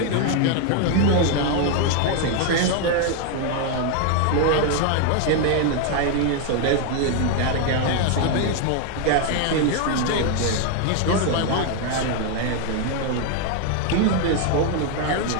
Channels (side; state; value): both; different; correlation 0.01